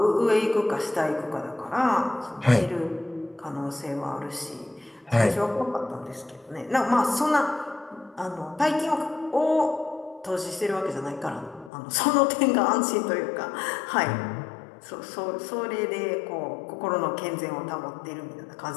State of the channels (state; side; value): drops out; right; at 11.7 s